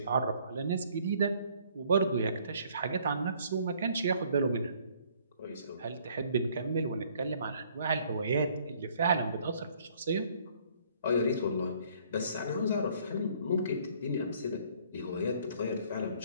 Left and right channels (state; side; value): inverted; both; correlation -0.61